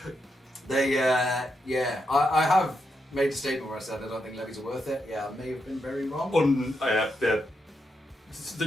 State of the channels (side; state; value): both; normal; correlation 0.83